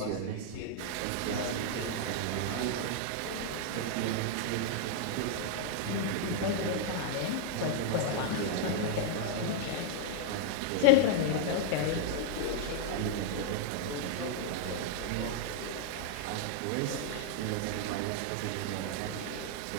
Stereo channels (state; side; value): different; both; correlation -0.01